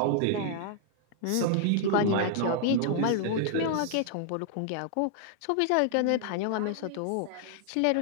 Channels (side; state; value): both; different; correlation -0.01